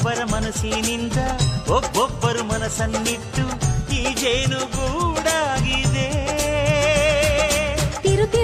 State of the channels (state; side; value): identical; both; correlation 1.00